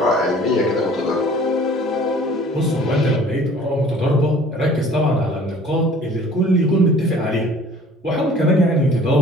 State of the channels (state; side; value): normal; both; correlation 0.50